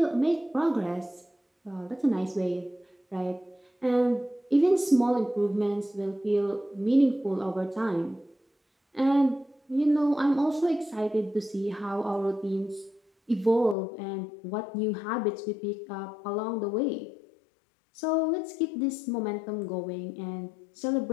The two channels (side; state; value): right; drops out; at 13.8 s